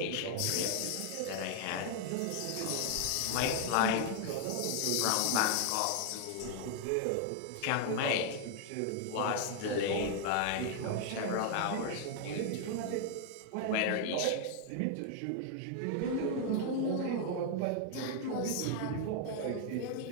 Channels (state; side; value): different; both; correlation 0.00